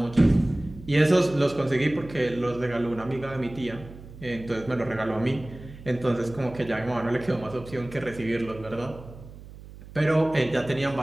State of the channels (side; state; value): right; noise; hum, 17 dB below the sound